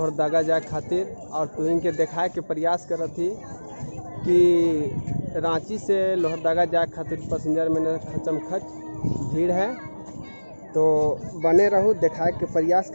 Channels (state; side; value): inverted; both; correlation -1.00